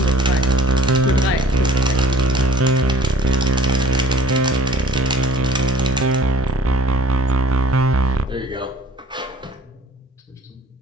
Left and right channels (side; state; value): both; normal; correlation 0.49